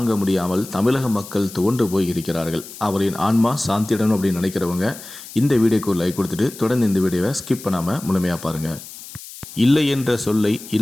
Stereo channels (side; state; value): left; noise; hiss, 15 dB below the sound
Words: முடியாமல் தமிழக மக்கள் துவண்டு போய் இருக்கிறார்கள். அவரின் ஆன்மா சாந்தியிடணும் அப்படின்னு நினைக்கிறவங்க இந்த வீடியோக்கு ஒரு லைக் கொடுத்துட்டு தொடர்ந்து இந்த வீடியோவை ஸ்கிப் பண்ணாமல் முழுமையாக பாருங்கள். இல்லை என்ற சொல்லை,